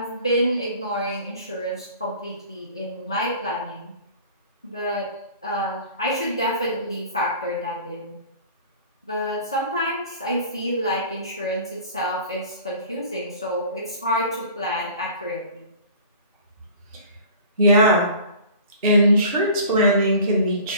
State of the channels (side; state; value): both; inverted; correlation -0.44